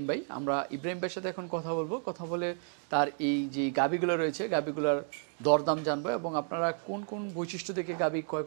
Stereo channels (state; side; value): silent; left; 56 dB below the other